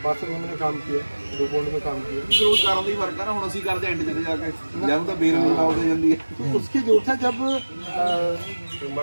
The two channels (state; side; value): inverted; both; correlation -1.00